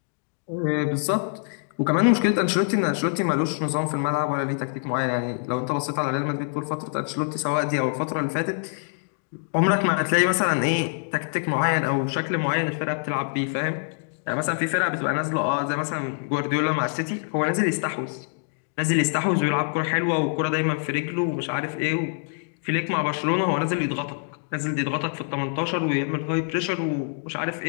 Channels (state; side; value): silent; right; digital silence